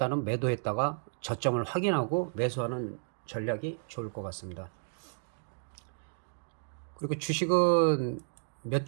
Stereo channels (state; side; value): silent; left; digital silence